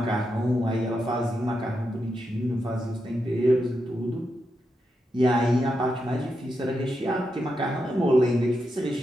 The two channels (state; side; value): normal; both; correlation 0.85